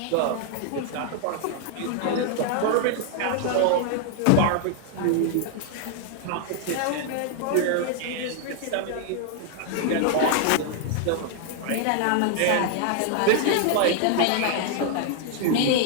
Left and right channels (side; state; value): both; different; correlation 0.00